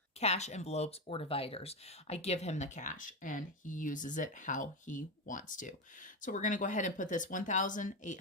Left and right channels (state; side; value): normal; both; correlation 0.14